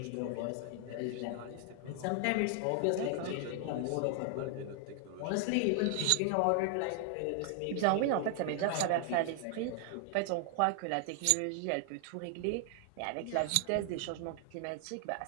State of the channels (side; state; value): both; different; correlation 0.00